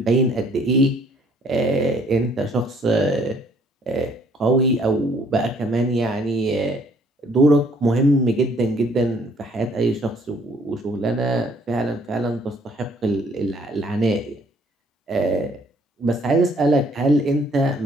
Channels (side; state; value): both; normal; correlation 0.62